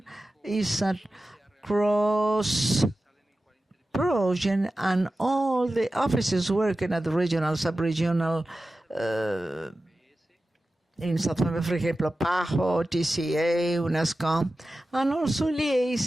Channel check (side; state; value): both; normal; correlation 0.94